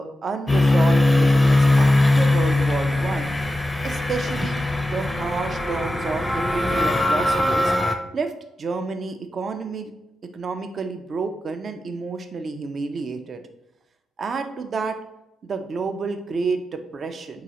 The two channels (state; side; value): normal; both; correlation 0.91